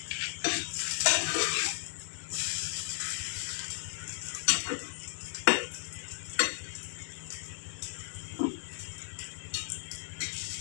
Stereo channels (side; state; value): right; silent; digital silence